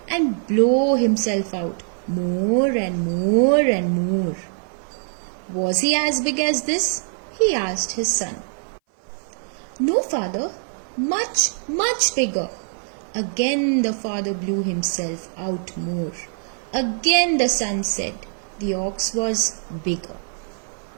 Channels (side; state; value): left; silent; 59 dB below the other